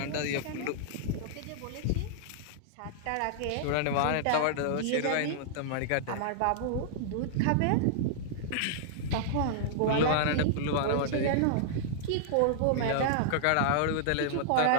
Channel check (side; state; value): both; different; correlation -0.01